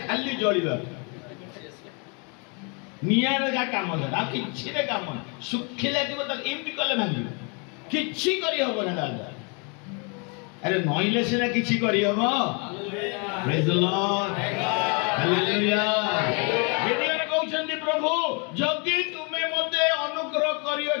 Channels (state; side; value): quieter; right; 35.0 dB